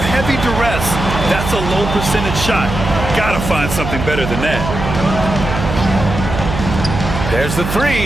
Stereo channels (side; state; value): right; noise; hum, 5 dB below the sound